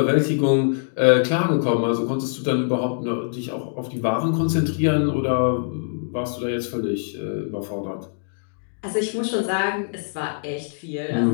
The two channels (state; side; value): silent; right; digital silence